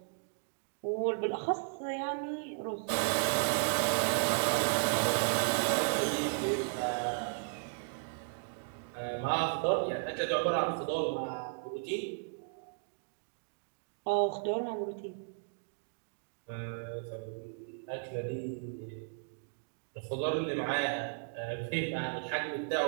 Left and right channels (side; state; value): left; silent; digital silence